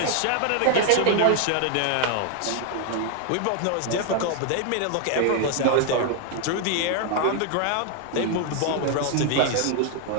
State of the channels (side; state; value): both; different; correlation 0.00